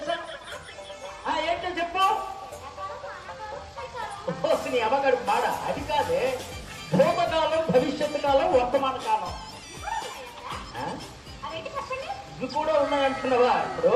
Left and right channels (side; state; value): both; identical; correlation 1.00